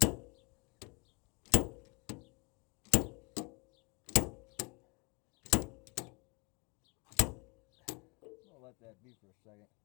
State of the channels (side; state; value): right; quieter; 30.3 dB